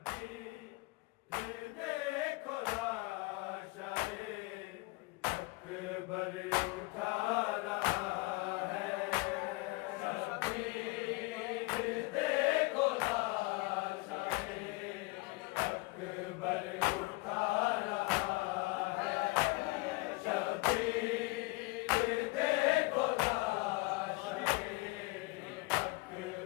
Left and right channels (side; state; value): right; quieter; 23.5 dB